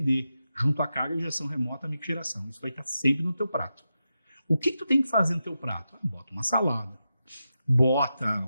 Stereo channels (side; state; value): both; inverted; correlation -0.89